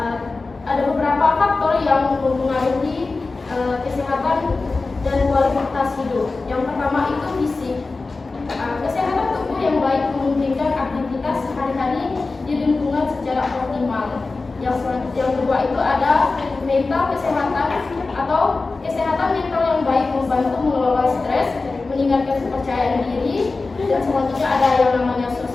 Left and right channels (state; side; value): quieter; right; 3.7 dB